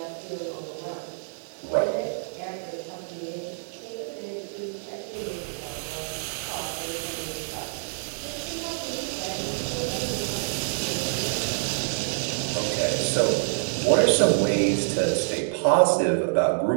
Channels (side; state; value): left; silent; digital silence